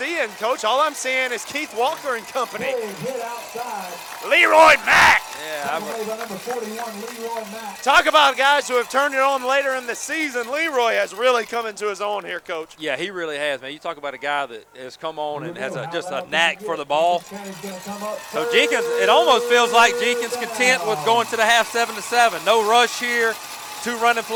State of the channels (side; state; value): both; identical; correlation 1.00